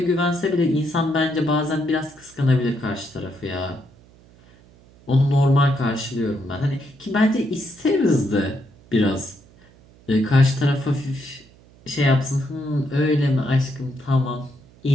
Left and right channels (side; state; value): right; noise; hum, 27 dB below the sound